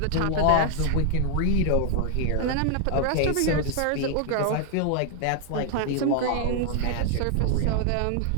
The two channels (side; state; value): both; different; correlation 0.00